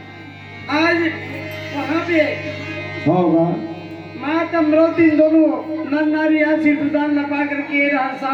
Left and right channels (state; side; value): identical; both; correlation 1.00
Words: आज वहाँ पे होगा। माता अमरोती दोनों नर नारी आशीर्वाद न पा करके